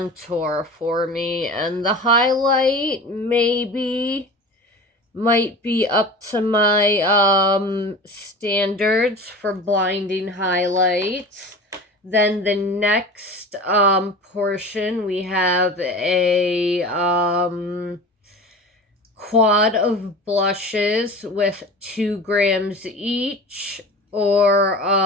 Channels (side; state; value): both; normal; correlation 0.35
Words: for me. And the highlight maybe might be up to my standards for blinding highlights. Then the next portion, we have a quad of blushes with 2 grams each, or